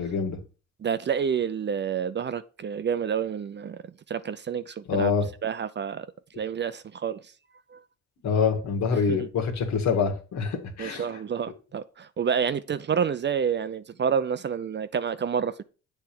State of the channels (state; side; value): normal; both; correlation 0.04